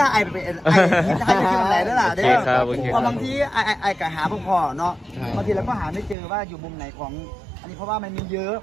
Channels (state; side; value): drops out; left; at 6.2 s